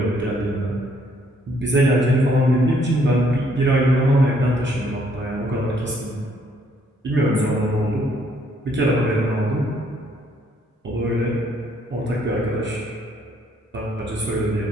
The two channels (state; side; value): normal; both; correlation 0.67